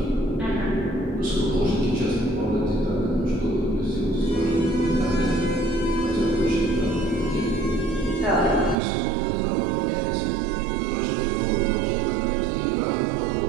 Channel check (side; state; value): left; drops out; at 8.8 s